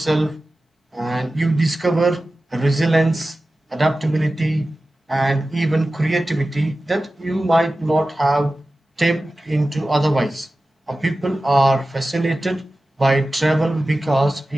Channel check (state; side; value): normal; both; correlation 0.95